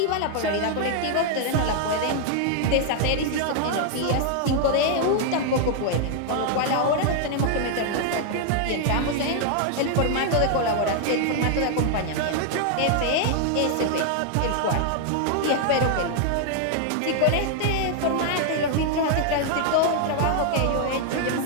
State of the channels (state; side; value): different; both; correlation 0.00